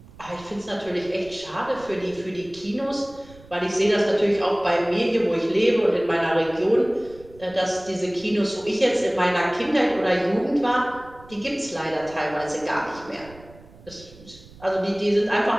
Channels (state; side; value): noise; right; rumble, 22 dB below the sound